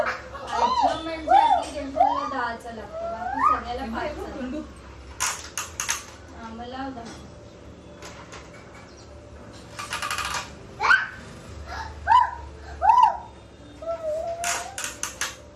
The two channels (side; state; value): both; identical; correlation 1.00